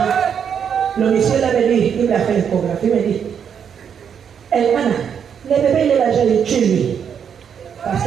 Le monsieur l'avait dit, il m'a fait l'échographie, il m'a dit, Elmana, le bébé il est là, je l'ai tué lui. Parce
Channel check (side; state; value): left; quieter; 7.7 dB